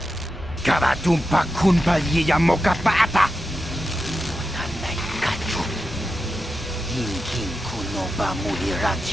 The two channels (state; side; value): normal; both; correlation 0.90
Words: Karatumpa kunpa liya mokapata. Nanay kachu. Hinkin kuno ba